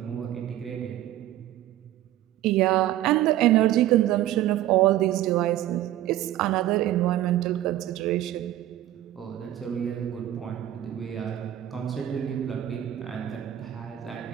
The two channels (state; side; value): quieter; left; 13.4 dB